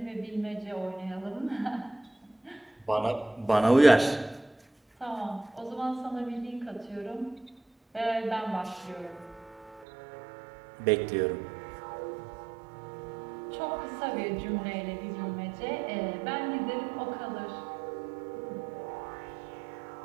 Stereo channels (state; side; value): drops out; left; at 9.9 s